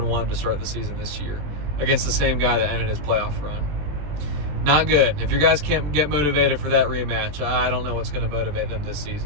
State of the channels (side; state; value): left; late; 20 ms